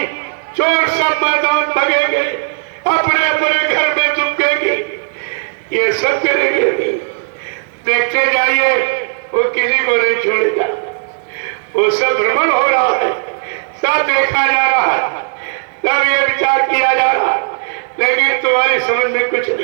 चोर सब मैदान भगेंगे, अपने अपने घर में चुपकेंगे, ये सब करेंगे। देखते जाइए, वो किसी को नहीं छोड़ेगा। वो सब भ्रमण हो रहा है, सब देखा जा रहा है, सब ये विचार किया जा रहा है, लेकिन तुम्हारी समझ में कुछ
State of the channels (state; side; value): silent; left; digital silence